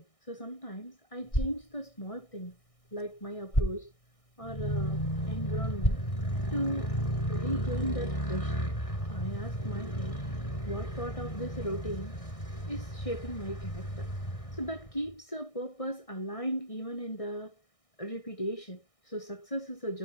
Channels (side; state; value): right; late; 1.6 ms